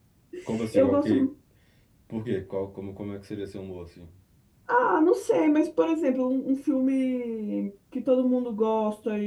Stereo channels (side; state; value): both; identical; correlation 1.00